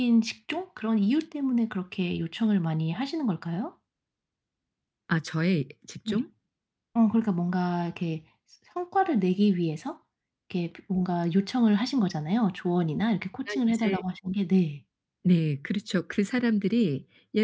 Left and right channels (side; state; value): both; identical; correlation 1.00